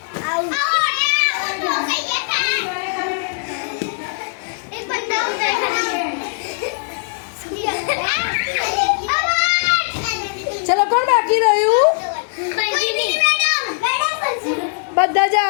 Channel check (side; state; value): right; silent; digital silence